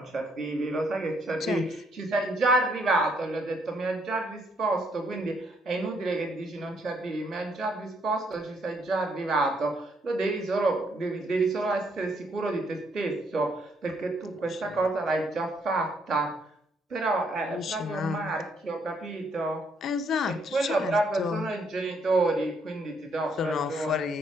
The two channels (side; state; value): both; normal; correlation 0.71